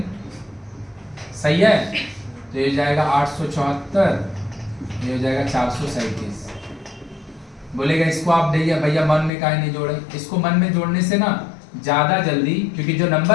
सही है. तो ये जाएगा 874. ये हो जाएगा 437. बोलेगा इसको आप भैया भैया मन में काहे नहीं जोड़े? इसको मन में जोड़ने से ना ज्यादा जल्दी, क्योंकि जो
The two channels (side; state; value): right; drops out; at 9.3 s